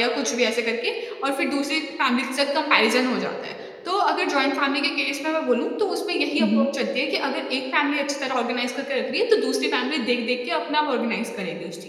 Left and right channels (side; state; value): both; identical; correlation 1.00